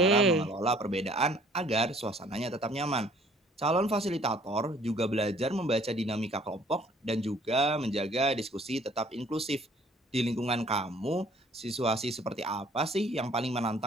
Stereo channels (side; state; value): both; normal; correlation 0.57